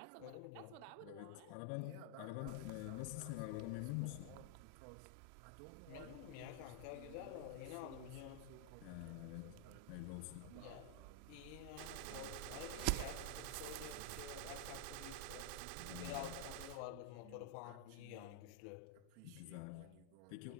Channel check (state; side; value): different; both; correlation 0.00